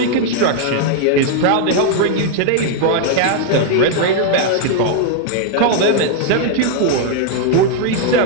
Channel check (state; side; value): different; both; correlation 0.00